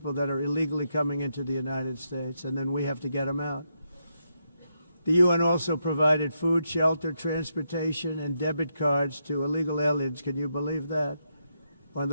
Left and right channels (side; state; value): both; inverted; correlation -0.81